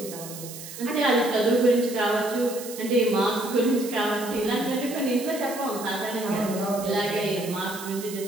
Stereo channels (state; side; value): noise; right; hiss, 12 dB below the sound